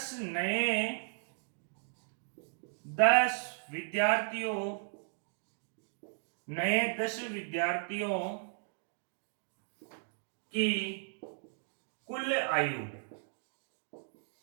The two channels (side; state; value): left; silent; digital silence